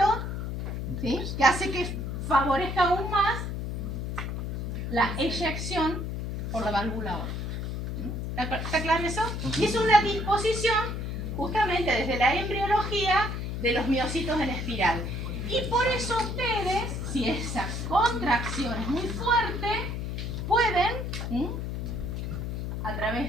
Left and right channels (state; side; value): noise; left; hum, 4 dB below the sound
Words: ¿sí?, que hace que favorezca aún más la eyección por la válvula aórtica. ¿Está claro eso? Y es una disposición justamente desde la embriología de los miocitos en espiral. Y por eso ustedes, si esa contracción es muy fuerte, pueden, a